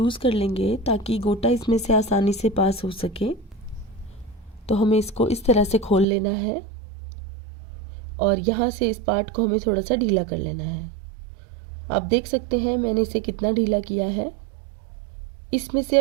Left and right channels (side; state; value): left; drops out; at 6.1 s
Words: कर लेंगे ताकि गोटा इसमें से आसानी से पास हो सके। तो हमें इसको इस तरह से खोल लेना है और यहाँ से इस पार्ट को हमें थोड़ा सा ढीला कर लेना है। आप देख सकते हैं मैंने इसे कितना ढीला किया है। इसमें से